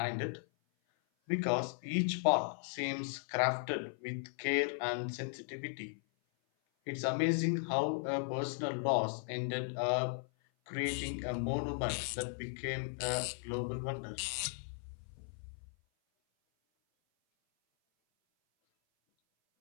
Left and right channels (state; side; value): silent; right; 53 dB below the other